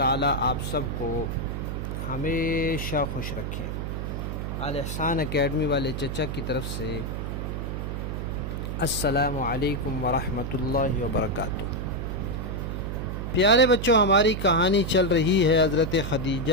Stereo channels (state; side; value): noise; right; hum, 4 dB below the sound